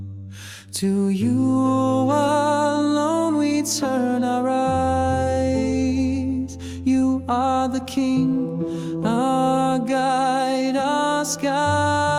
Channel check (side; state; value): both; identical; correlation 1.00